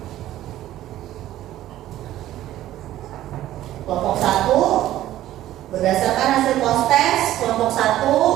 Kelompok 1 berdasarkan hasil post test, kelompok 1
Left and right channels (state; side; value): quieter; left; 13.8 dB